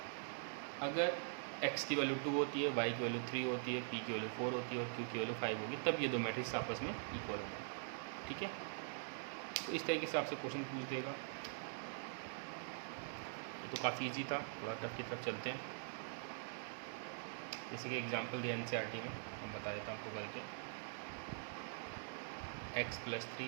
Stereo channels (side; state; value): left; silent; digital silence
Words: अगर एक्स की वैल्यू 2 होती है, वाई की वैल्यू 3 होती है, पी की वैल्यू 4 होती है और क्यू की वैल्यू 5 होगी, तब ये दो मैट्रिक्स आपस में इक्वल होंगे। ठीक है, तो इस तरीके से आपसे क्वेश्चन पूछ देगा। तो काफ़ी इजी था, थोड़ा टफ की तरफ चलते हैं। इसी के एग्जाम्पल दिया एनसीईआरटी में, मैं बता देता हूँ आपको करके। x +